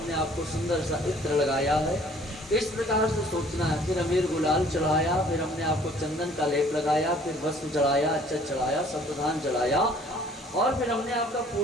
आपको सुंदर सा इत्र लगाया है। इस प्रकार से सोचना है। फिर अमीर गुलाल चढ़ाया, फिर हमने आपको चंदन का लेप लगाया, फिर वस्त्र चढ़ाया, अक्षत चढ़ाया, सप्तधान चढ़ाया, और फिर हमने आपका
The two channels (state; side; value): normal; both; correlation 0.55